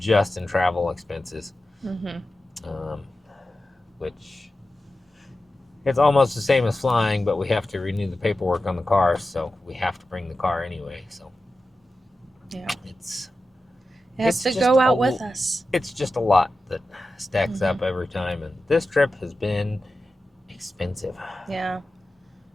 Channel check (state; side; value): normal; both; correlation 0.93